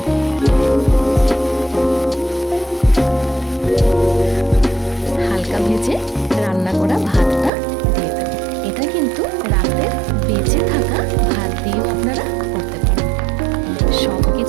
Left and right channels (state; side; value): drops out; left; at 7.5 s